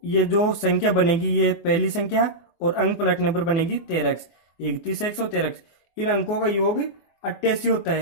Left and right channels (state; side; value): late; right; 24 ms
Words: ये जो संख्या बनेगी ये पहली संख्या और अंक पलटने पर बनेगी 13x, 31x और 13x। इन अंकों का योग 88 होता